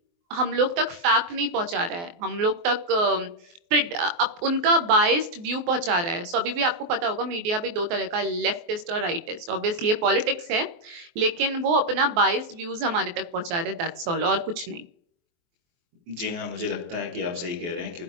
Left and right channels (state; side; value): late; left; 23 ms